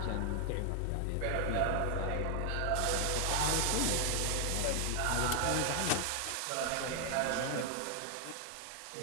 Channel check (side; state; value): both; different; correlation 0.00